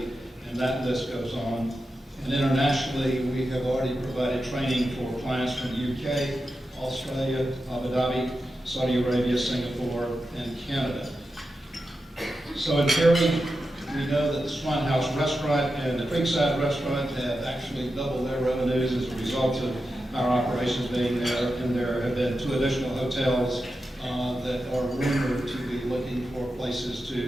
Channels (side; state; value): both; normal; correlation 0.90